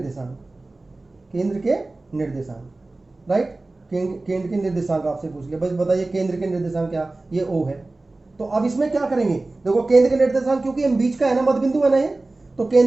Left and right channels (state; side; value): quieter; left; 3.1 dB